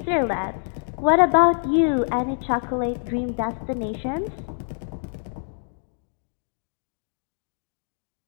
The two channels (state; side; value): silent; right; digital silence